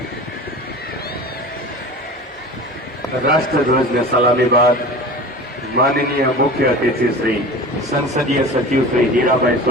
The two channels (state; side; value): normal; both; correlation 0.36